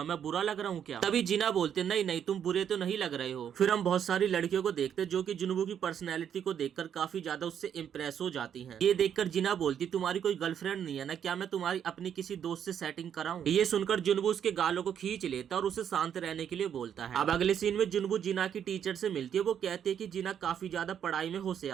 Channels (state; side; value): quieter; left; 8.8 dB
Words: मैं बुरा लग रहा हूँ क्या? तभी जिना बोलते, नहीं नहीं, तुम बुरे तो नहीं लग रहे हो। फिर हम बहुत सारी लड़कियों को देखते जो कि जुनबू की पर्सनैलिटी को देखकर काफी ज्यादा उससे इम्प्रेस हो जाती हैं। ये देखकर जिना बोलती, तुम्हारी कोई गर्लफ्रेंड नहीं है ना? क्या मैं तुम्हारी अपनी किसी दोस्त से सेटिंग कराऊं? ये सुनकर जुनबू उसके गालों को खींच लेता और उसे शांत रहने के लिए बोलता है। अब अगले सीन में जुनबू जिना की टीचर से मिलती है। वो कहते हैं कि जिना काफी ज्यादा पढ़ाई में